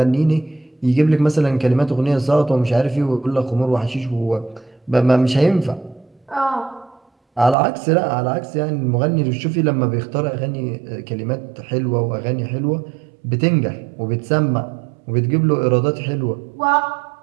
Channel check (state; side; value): drops out; left; at 7.6 s